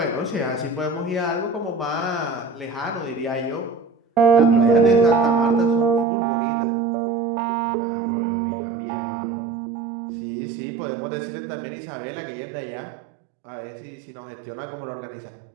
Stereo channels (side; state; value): left; drops out; at 6.1 s